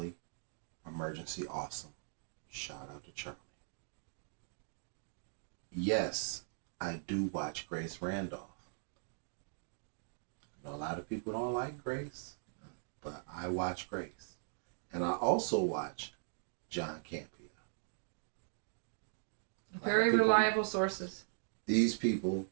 Emergency Awesome. Shout out to Charlie. Yes, I do watch Grace Randolph. I know a lot of people don't like Grace, but I watch Grace. And I also watch John Campia. Very reliable sources. These people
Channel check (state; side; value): silent; left; digital silence